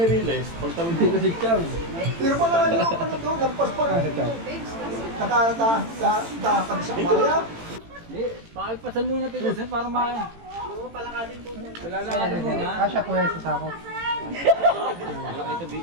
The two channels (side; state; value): left; late; 18 ms